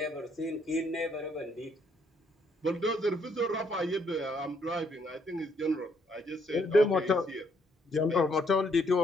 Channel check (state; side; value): normal; both; correlation 0.70